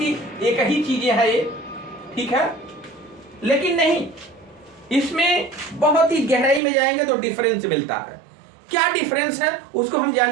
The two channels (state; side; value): drops out; left; at 6.6 s